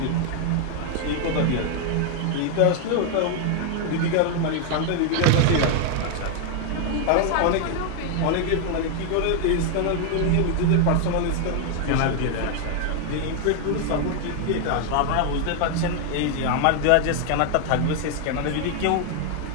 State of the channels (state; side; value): different; both; correlation 0.00